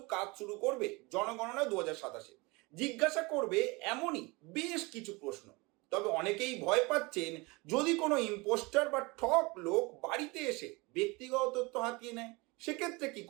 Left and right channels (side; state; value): left; quieter; 25.6 dB